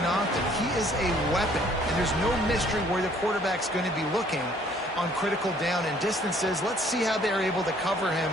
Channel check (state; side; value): normal; both; correlation 0.60